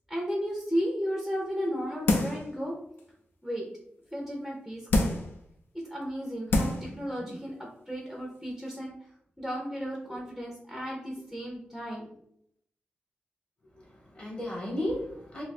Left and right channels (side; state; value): both; normal; correlation 0.87